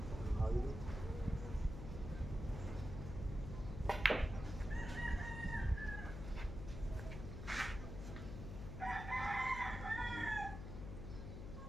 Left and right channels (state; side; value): noise; left; hum, 7 dB below the sound